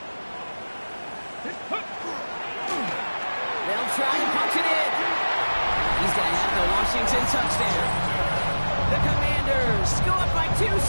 They'll try and punch it in. He's going to have the Washington touchdown. The Commanders go up by 2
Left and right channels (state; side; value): inverted; both; correlation -1.00